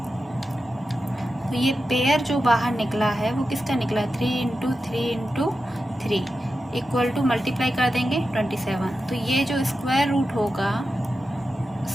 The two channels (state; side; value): normal; both; correlation 0.91